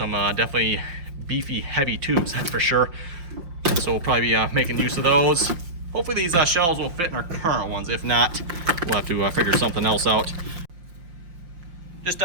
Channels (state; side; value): late; left; 5.7 ms